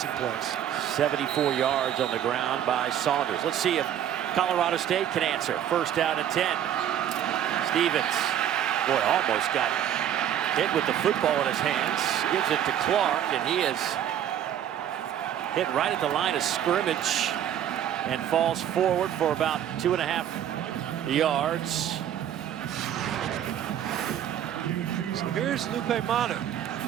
plays. 74 yards on the ground by Saunders. Let's see if Colorado State can answer. First down and 10. Stevens, boy, almost got hit with the football in his hands. Gives it to Clark, and he is hit right at the line of scrimmage and falls forward for about 2.5 yards. So here's Lupe Manu.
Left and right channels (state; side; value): quieter; left; 10.3 dB